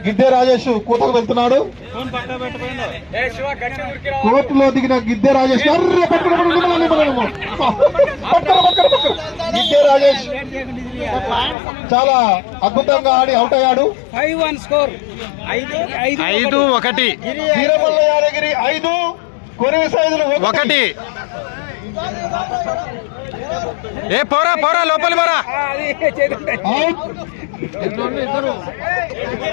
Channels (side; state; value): right; drops out; at 11.6 s